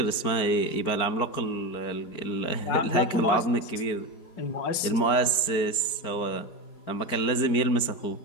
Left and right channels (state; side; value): late; right; 4.5 ms